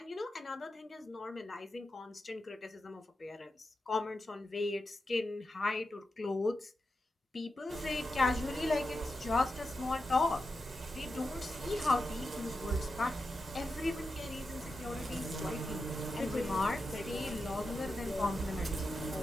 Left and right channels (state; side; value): normal; both; correlation 0.89